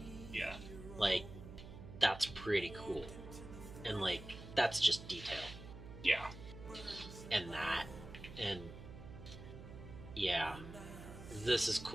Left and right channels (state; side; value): noise; right; hum, 13 dB below the sound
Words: Yeah. Like, that's pretty cool. And like, that's just detail. Yeah. And that, and yeah, this is